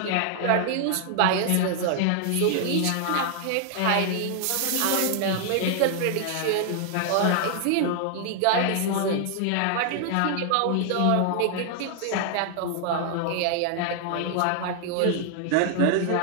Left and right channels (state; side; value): different; both; correlation 0.00